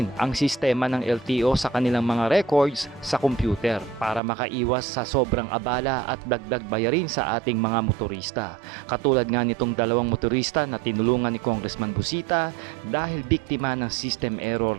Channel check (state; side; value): drops out; left; at 4.2 s